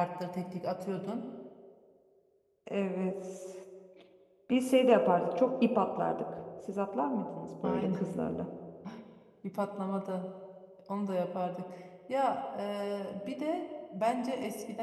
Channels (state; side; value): identical; both; correlation 1.00